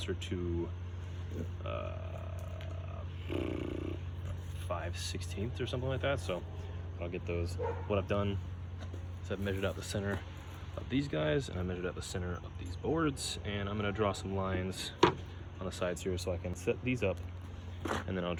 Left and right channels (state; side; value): identical; both; correlation 1.00